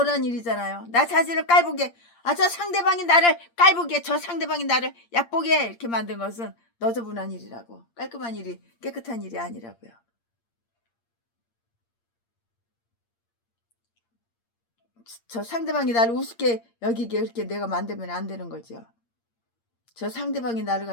일이잖아요. 나 자신을 깔보게, 저 상대방이 나를 깔보게, 저 상대방이 나를 얕보게 이렇게 만든 것은 너저분한 일이라고. 깔끔한 일이, 깨끗한 일이 아니라고요. 저 상대방이 나를 우습게 여기게 이렇게 내가 만들면 안 되는 거죠. 저 상대방이 나를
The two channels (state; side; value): late; right; 8.6 ms